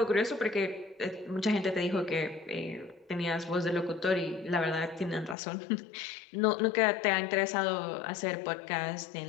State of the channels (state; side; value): drops out; right; at 5.4 s